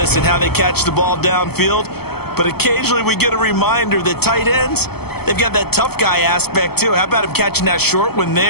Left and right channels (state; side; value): late; right; 0.96 ms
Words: and how they catch the ball downfield. But occasionally we get a reminder that tight ends, they've got that tough guy aspect too. How about him catching that short one